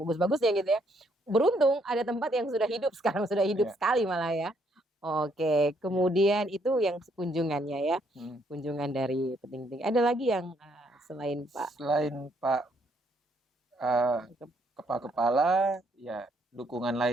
gitu ya. Beruntung ada tempat yang sudah hidup, sekarang sudah hidup sekali malah ya. Oke, kemudian itu yang kunjungannya ya. Kunjungan dari petinggi. Ada lagi yang selain Pak? Selain Pak kepala, ya dukungan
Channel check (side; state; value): both; normal; correlation 0.71